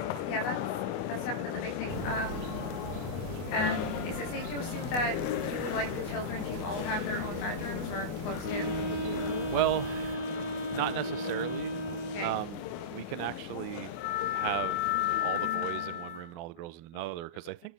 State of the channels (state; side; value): late; right; 24 ms